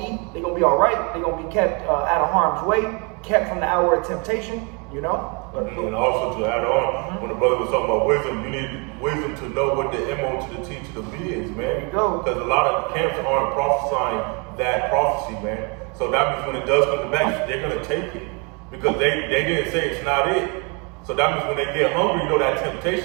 to eat. They're going to be all right. They're going to be kept out of harm's way, kept from the hour of temptation, And also to add on, when the brother was talking about wisdom, you need wisdom to know what the M.O. to the T to the B is, man. There you go. Because a lot of camps aren't prophesying that prophecy, man. So that means when it does come to pass, they're going to take it. Because they didn't say it's not it. So that means when they get hungry, that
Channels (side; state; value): left; quieter; 32.6 dB